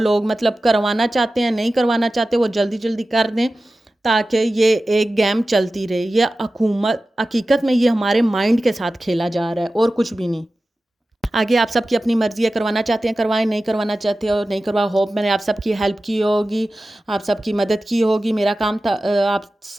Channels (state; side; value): normal; both; correlation 0.95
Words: مطلب کروانا چاہتے ہیں نہیں کروانا چاہتے وہ جلدی جلدی کر دیں تاکہ یہ ایک گیم چلتی رہے. یہ حقیقت میں یہ ہمارے مائنڈ کے ساتھ کھیلا جا رہا ہے اور کچھ بھی نہیں. آگے آپ سب کی اپنی مرضی ہے, کروانا چاہتے ہیں کروائیں, نہیں کروانا چاہتے ہو نہیں کروا. ہوپ میں نے آپ سب کی ہیلپ کی ہوگی, آپ سب کی مدد کی ہوگی. میرا کام تھا آپ